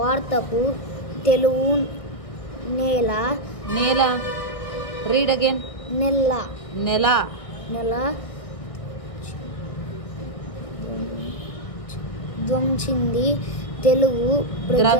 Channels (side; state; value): right; late; 1.6 ms